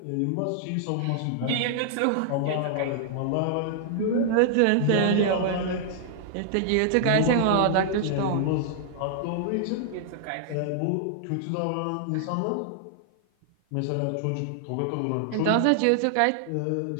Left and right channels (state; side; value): different; both; correlation -0.01